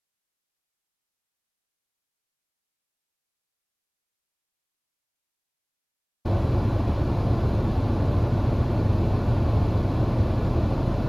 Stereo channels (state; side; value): identical; both; correlation 1.00